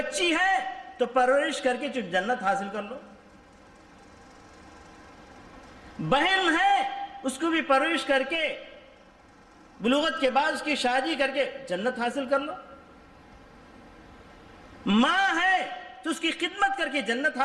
ہے تو پرورش کر کے جنت حاصل کر لو، بہن ہے اس کو بھی پرورش کر کے بلوغت کے بعد اس کی شادی کر کے جنت حاصل کر لو، ماں ہے تو اس کی خدمت کر کے جنت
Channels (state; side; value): identical; both; correlation 1.00